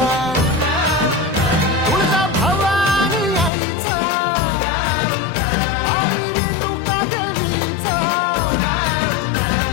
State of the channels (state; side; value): drops out; right; at 3.5 s